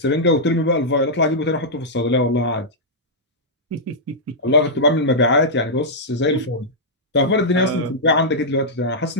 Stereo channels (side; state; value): both; normal; correlation -0.09